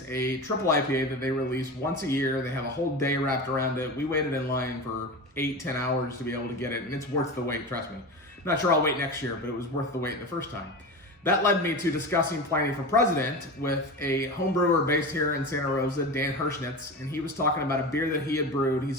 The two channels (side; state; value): both; normal; correlation 0.27